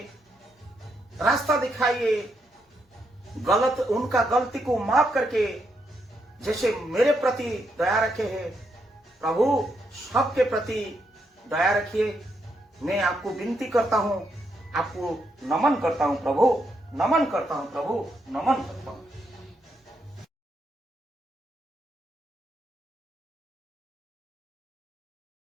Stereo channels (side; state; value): both; normal; correlation 0.79